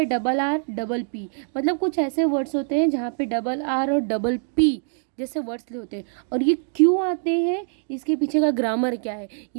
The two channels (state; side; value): silent; left; 63 dB below the other